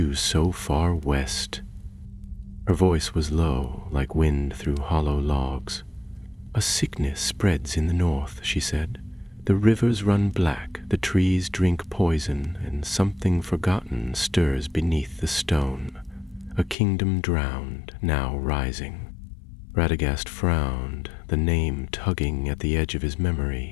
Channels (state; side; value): drops out; right; at 16.8 s